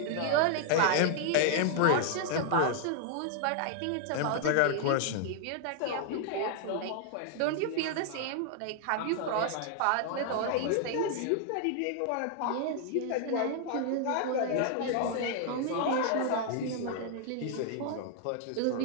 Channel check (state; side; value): different; both; correlation 0.00